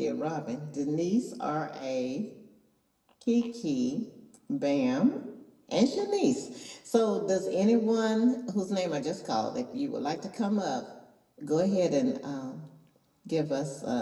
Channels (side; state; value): both; identical; correlation 1.00